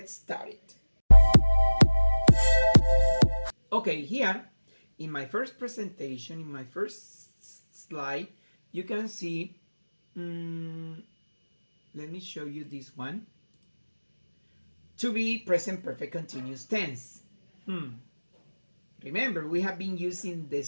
started. Okay, here in my first presentation, in my first slide, you can see, let me show you this one. To be present perfect continuous tense. Remember, we have been using the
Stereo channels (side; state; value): both; inverted; correlation -1.00